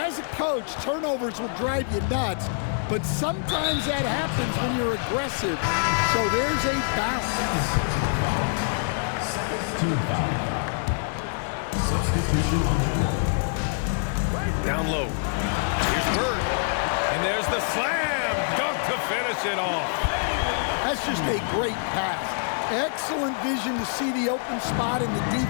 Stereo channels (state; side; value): silent; right; digital silence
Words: a coach, turnovers will drive you nuts, but sometimes that happens when you're aggressive. So there's a bounce. Personal foul. Second team foul. Substitution on the court. Down low. Here's Bird. And there's the slam dunk to finish it off. That's just a great pass. Excellent vision to see the open spot in the